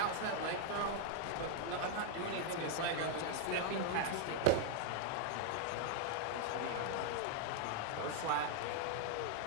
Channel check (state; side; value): different; both; correlation 0.00